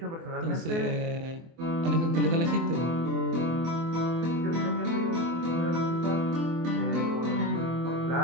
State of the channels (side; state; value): left; late; 24 ms